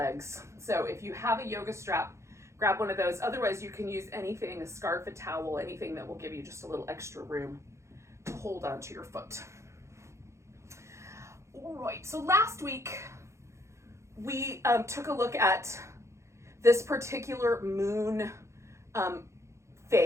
So if you have a yoga strap, grab one of those. Otherwise, you can use anything, a scarf, a towel, anything that will give you just a little extra room to hold onto your foot. All right, so last week we took a look at this particular moon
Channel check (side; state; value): left; late; 0.14 ms